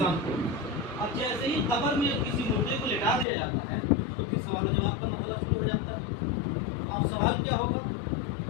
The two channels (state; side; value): drops out; right; at 3.2 s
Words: کو۔ اب جیسے ہی قبر میں کسی مردے کو لٹا دیا جاتا ہے تو پھر سوال و جواب کا مسئلہ شروع ہو جاتا ہے۔ اب سوال کیا ہوگا؟